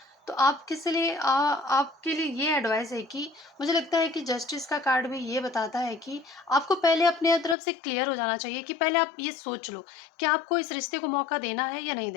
तो आप किस लिए आपके लिए ये एडवाइस है कि मुझे लगता है कि जस्टिस का कार्ड भी ये बताता है कि आपको पहले अपने तरफ से क्लियर हो जाना चाहिए, कि पहले आप ये सोच लो कि आपको इस रिश्ते को मौका देना है या नहीं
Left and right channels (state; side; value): drops out; right; at 7.6 s